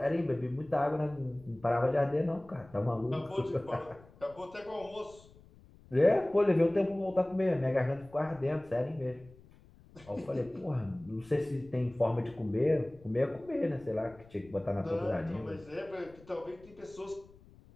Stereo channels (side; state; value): left; noise; rumble, 24 dB below the sound